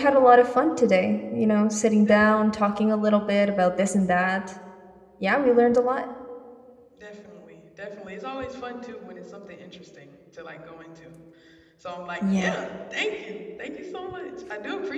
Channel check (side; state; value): both; identical; correlation 1.00